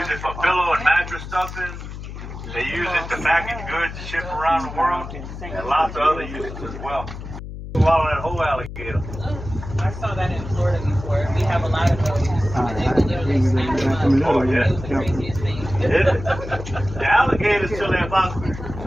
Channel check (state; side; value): noise; left; hum, 10 dB below the sound